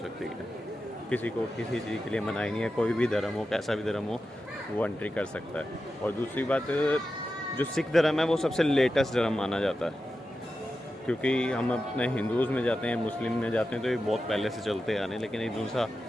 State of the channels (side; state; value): both; normal; correlation 0.91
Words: है। किसी को किसी चीज़ के लिए मनाही नहीं है, कोई भी धर्म हो, कैसा भी धर्म हो, वो एंट्री कर सकता है। और दूसरी बात, जो सिख धर्म है वो सबसे लेटेस्ट धर्म माना जाता है, क्योंकि हम अपने हिंदूज़ में जाते हैं, मुस्लिम में जाते हैं तो ये बहुत पहले से चलते आ रहे हैं, लेकिन ये दूसरा